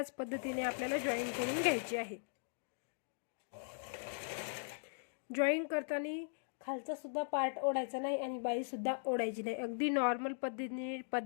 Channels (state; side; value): silent; right; digital silence